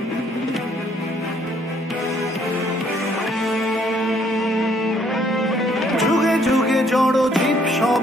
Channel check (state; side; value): normal; both; correlation 0.65